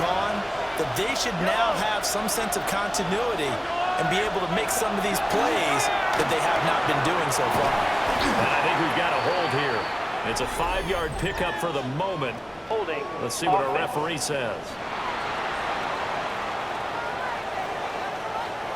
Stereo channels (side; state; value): both; identical; correlation 1.00